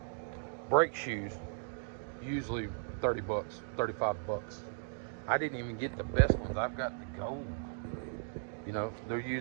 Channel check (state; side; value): silent; left; digital silence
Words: Brake shoes, usually $30, $35. I didn't even get the best ones. I've got the gold. You know, they're